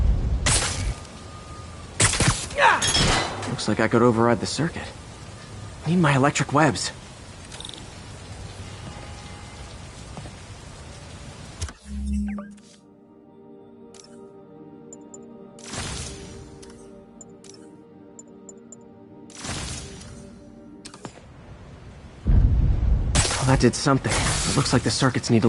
Looks like I could override the circuit. Need my electric webs. Well, that did something. It looks like the circuits need a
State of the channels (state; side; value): identical; both; correlation 1.00